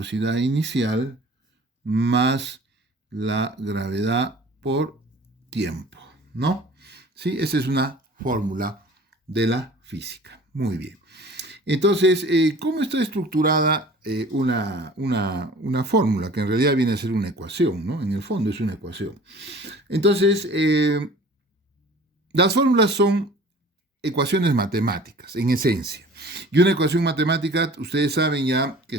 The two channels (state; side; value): normal; both; correlation 0.46